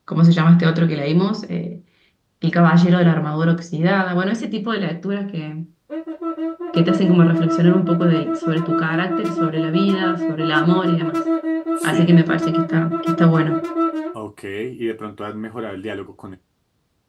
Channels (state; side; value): identical; both; correlation 1.00